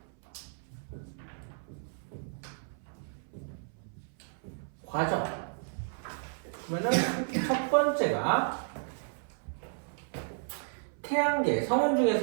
과정. 그러면은 첫 번째가 태양계 성운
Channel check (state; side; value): silent; left; 56 dB below the other